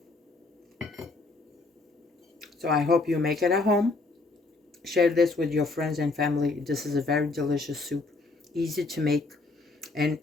So I hope you make it at home. Share this with your friends and family. This is a very delicious soup, easy to make. And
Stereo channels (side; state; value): right; quieter; 3.5 dB